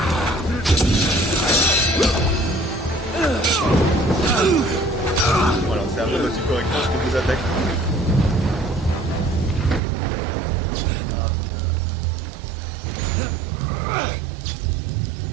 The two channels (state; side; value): drops out; left; at 9.8 s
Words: Voilà, c'est un peu aussi correctement ce que vous attaquez.